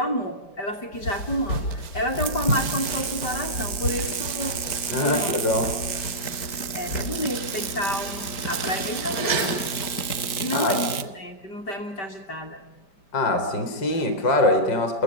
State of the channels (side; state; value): right; late; 5.1 ms